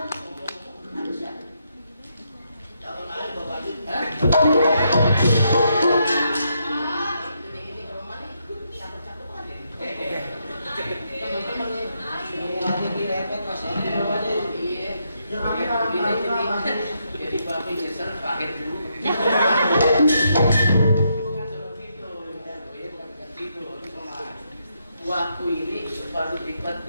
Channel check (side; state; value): both; inverted; correlation -0.79